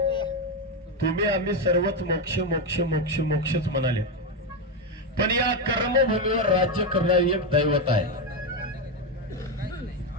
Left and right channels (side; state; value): both; normal; correlation 0.09